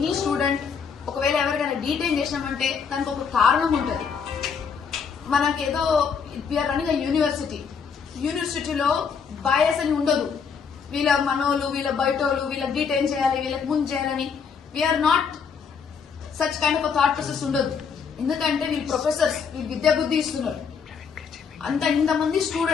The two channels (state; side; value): quieter; right; 6.3 dB